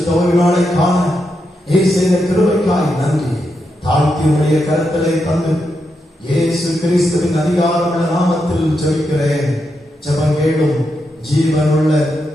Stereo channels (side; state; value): both; normal; correlation 0.84